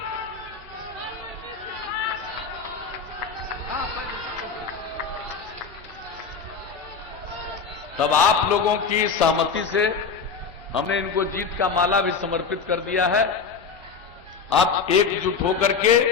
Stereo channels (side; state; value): right; quieter; 5.6 dB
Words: तब आप लोगों की सहमति से हमने इनको जीत का माला भी समर्पित कर दिया है। आप एकजुट होकर के